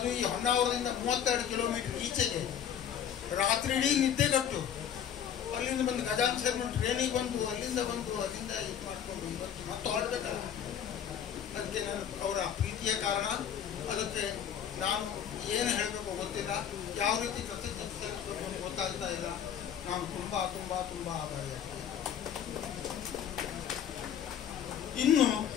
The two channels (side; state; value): right; quieter; 9.0 dB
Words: ಈ ಹೊನ್ನಾವರದಿಂದ 32 ಕಿಲೋಮೀಟರ್ ಈಚೆಗೆ ರಾತ್ರಿ ಇಡೀ ನಿದ್ದೆಗಟ್ಟು ಅಲ್ಲಿಂದ ಬಂದು ಗಜಾನನ ಶರ್ಮಾ ಟ್ರೈನಿಗೆ ಬಂದು ಅಲ್ಲಿಂದ ಇದು ಮಾಡಿಕೊಂಡು ಇವತ್ತು ಮತ್ತೆ ಹೊರಡ್ಬೇಕಲ್ಲ. ಅದಕ್ಕೆ ನಾನು ಅವರ ಪ್ರೀತಿಯ ಕಾರಣ. ಅದಕ್ಕೆ ನಾನು ಏನು ಹೇಳಬೇಕು ಗೊತ್ತಿಲ್ಲ, ಯಾವ ರೀತಿ ಕೃತಜ್ಞತೆ ಸಲ್ಲಿಸಬೇಕು ಅಂತ ಗೊತ್ತಾಗ್ತಾ ಇಲ್ಲ. ನಾನು ತುಂಬ ತುಂಬ ತುಂಬ ಆಭಾರಿಯಾಗ್ತೇನೆ. ಇನ್ನು